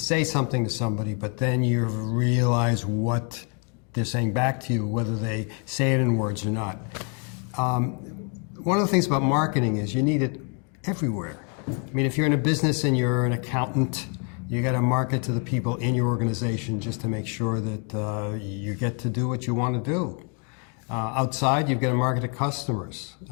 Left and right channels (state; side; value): quieter; right; 38.3 dB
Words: something to somebody, but then you realize what they're saying back to you, whether they say it in words or not. One of the things about marketing is you need it everywhere. I mean, if you're in a business and you're an accountant, you got to market to the people in your organization just to make sure that you get to do what you want to do. Outside, you've got to market to customers.